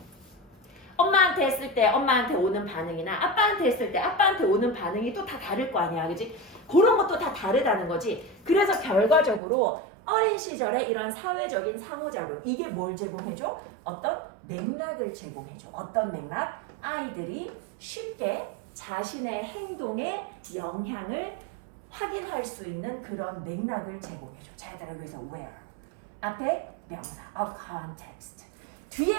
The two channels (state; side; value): drops out; left; at 9.4 s